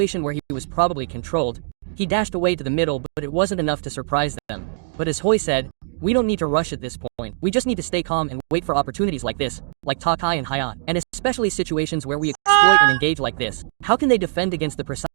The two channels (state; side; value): silent; left; 64 dB below the other